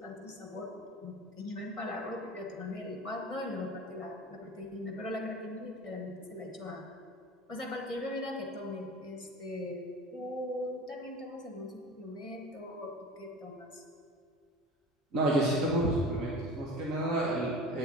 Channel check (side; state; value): both; normal; correlation 0.37